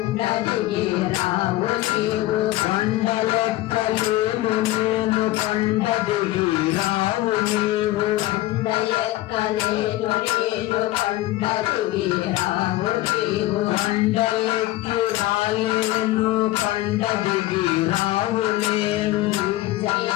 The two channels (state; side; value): quieter; right; 16.8 dB